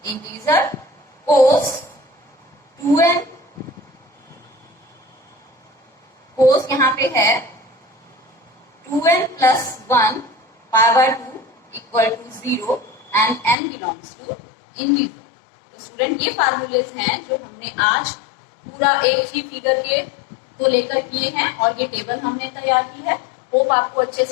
integer, cos 2n, cos यहाँ पे है 2n plus 1 π/2 equal to 0 and n belongs to integer. तो स्टूडेंट ये फार्मूलेज हैं जो हमने आज पूरा एक ही फिगर के को लेकर किए हैं, और ये टेबल हमने तैयार की है। होप आपको अच्छे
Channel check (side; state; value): right; drops out; at 13.6 s